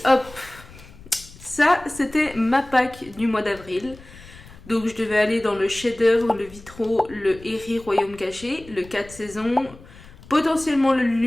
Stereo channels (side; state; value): left; noise; rumble, 20 dB below the sound